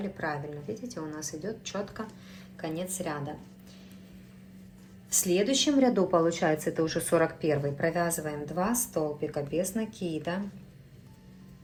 правильно. Видите, у нас идет четко конец ряда. В следующем ряду, получается, это уже 41-й, провязываем 2 столбика без накида.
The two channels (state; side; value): identical; both; correlation 1.00